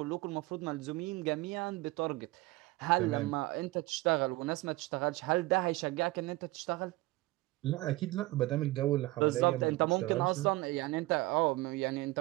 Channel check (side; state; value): left; quieter; 20.0 dB